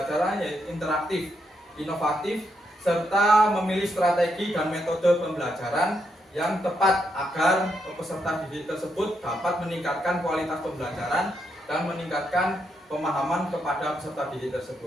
interaktif, inovatif, serta memilih strategi dan metode pembelajaran yang tepat agar peserta didik tersebut dapat meningkatkan kualitas pembelajaran dan meningkatkan pemahaman kepada peserta didik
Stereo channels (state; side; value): normal; both; correlation 0.80